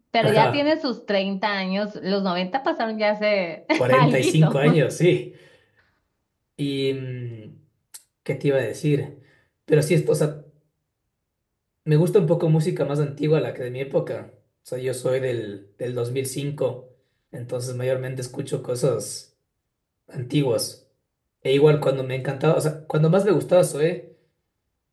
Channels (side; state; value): both; identical; correlation 1.00